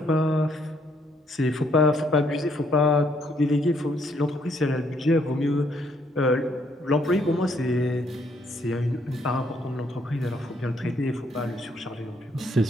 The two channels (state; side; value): normal; both; correlation 0.70